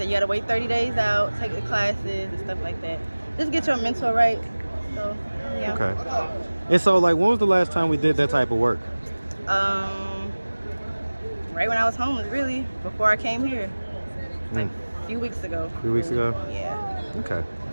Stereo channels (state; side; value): inverted; both; correlation -1.00